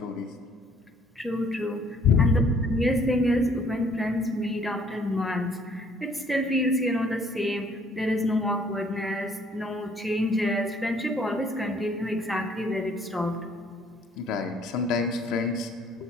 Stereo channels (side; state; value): both; normal; correlation 0.61